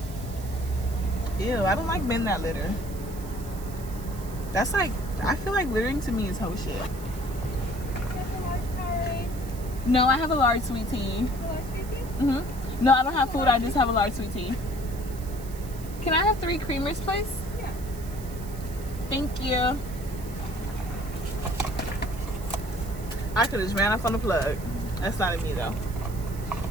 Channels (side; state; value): right; noise; hiss, 18 dB below the sound